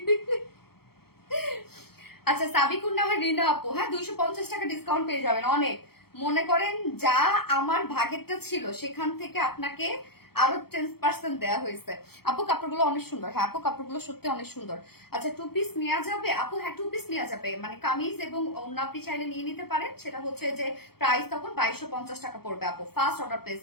আচ্ছা সাবিকুন না হয় রিনা আপু, হ্যাঁ 250 টাকা ডিসকাউন্ট পেয়ে যাবেন। অনেক মনে করেন যা আমার ভাগেরটা ছিল সেখান থেকে আপনাকে আরো 10% দেওয়া হয়েছে। আপু কাপড়গুলো অনেক সুন্দর। হ্যাঁ আপু কাপড়গুলো সত্যি অনেক সুন্দর। আচ্ছা 2 পিস নেওয়া যাবে আপু? হ্যাঁ 2 পিস নেওয়া যাবে, মানে কামিজ এবং ওড়না আপনি চাইলে নিয়ে নিতে পারেন। সেটা হচ্ছে যে প্রাইস তখন 2250 টাকা পড়বে। আপু ফার্স্ট অর্ডার প্লেস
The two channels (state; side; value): late; right; 0.95 ms